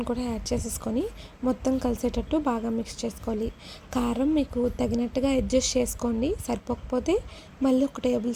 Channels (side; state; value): both; identical; correlation 1.00